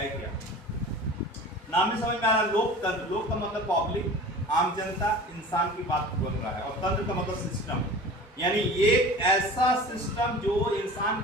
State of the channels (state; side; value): normal; both; correlation 0.39